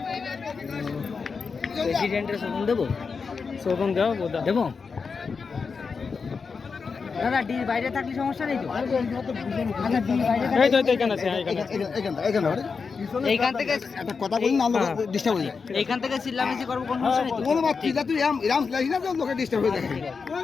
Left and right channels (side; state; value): right; quieter; 5.2 dB